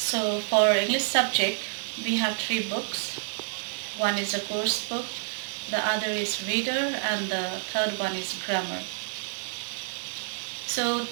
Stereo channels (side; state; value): left; silent; digital silence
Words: for English subject, we have three books. One is a course book, the other is reader, and the third one is grammar. So